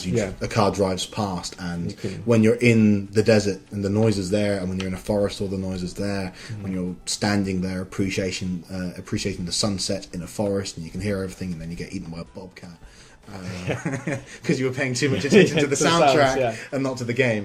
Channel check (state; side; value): identical; both; correlation 1.00